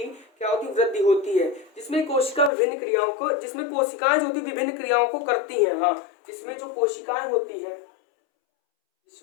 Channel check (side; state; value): right; drops out; at 2.5 s